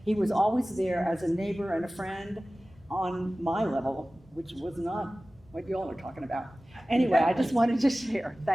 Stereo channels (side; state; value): both; normal; correlation 0.97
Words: He was always there as a neighbor and a friend on my level, which was not what you all are talking about. Anyway, I just wanted to share.